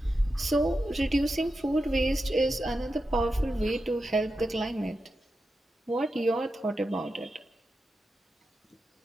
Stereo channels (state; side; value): normal; both; correlation 0.90